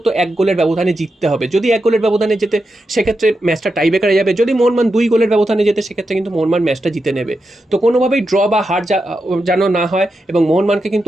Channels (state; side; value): normal; both; correlation 0.88